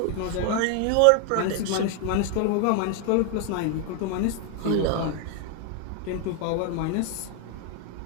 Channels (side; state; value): both; different; correlation 0.00